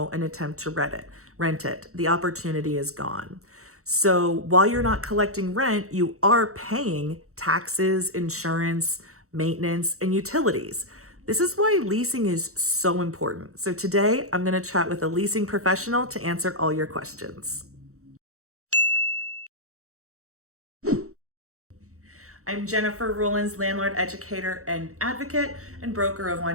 and attempt to rent it. The opportunity is gone. So while you're not collecting rent, you are paying taxes, insurance, maintenance, and utilities. This is why leasing is so important. So today I'm going to chat with a leasing professional to answer all your questions. I'm Jennifer Rollins, landlord, educator, and advocate, and broker of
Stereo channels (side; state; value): left; late; 0.64 ms